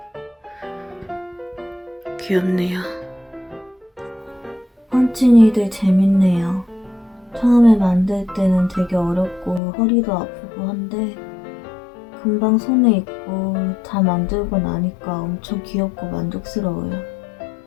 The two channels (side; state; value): right; drops out; at 9.6 s